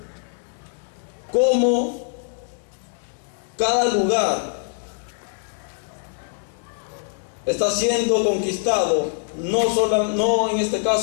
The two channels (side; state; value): right; silent; 63 dB below the other